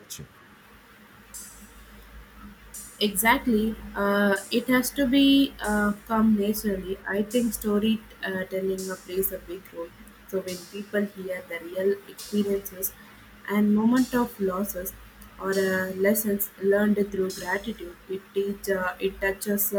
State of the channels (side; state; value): both; identical; correlation 1.00